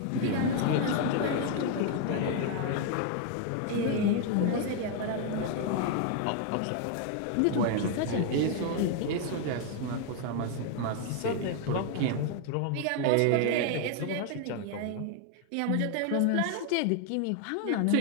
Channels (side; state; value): both; different; correlation 0.00